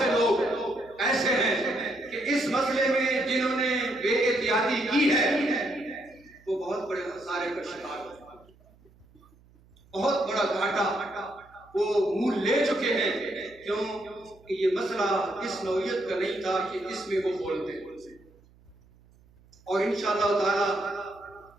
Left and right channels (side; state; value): right; noise; hum, 28 dB below the sound